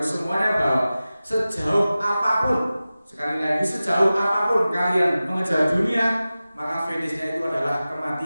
semuanya bahwa sejauh apapun, sekali lagi sejauh apapun kalian mengejar dunia, maka finishnya itu adalah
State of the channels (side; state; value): both; inverted; correlation -0.96